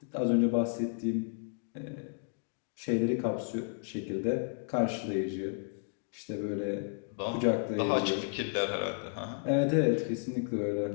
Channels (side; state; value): right; silent; digital silence